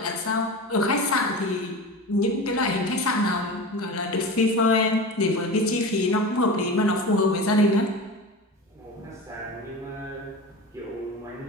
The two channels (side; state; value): both; normal; correlation 0.30